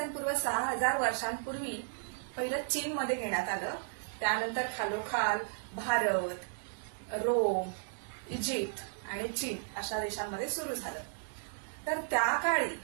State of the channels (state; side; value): silent; left; digital silence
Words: पूर्व 6000 वर्षांपूर्वी पहिलं चीनमध्ये घेण्यात आलं. त्यानंतर खालोखाल भारत, रोम, इजिप्त आणि चीन अशा देशांमध्ये सुरू झालं. तर त्या काळी